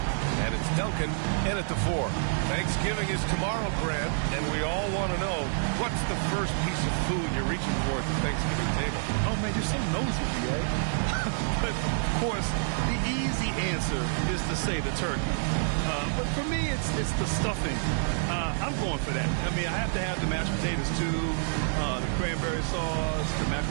and it's Duncan in at the 4. Thanksgiving is tomorrow, Grant, and we all want to know, what's the first piece of food you're reaching for at the Thanksgiving table? Oh, man, you're so nosy, B.A. But, of course, the easy answer is to say the turkey. But for me, it's the stuffing. I'm going for that. I mean, I have to have the mashed potatoes, too, the cranberry sauce, the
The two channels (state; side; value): silent; left; digital silence